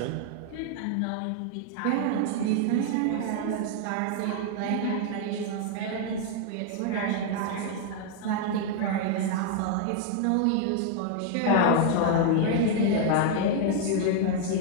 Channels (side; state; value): both; different; correlation 0.00